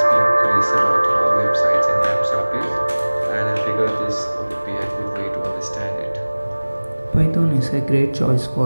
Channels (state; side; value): inverted; both; correlation -1.00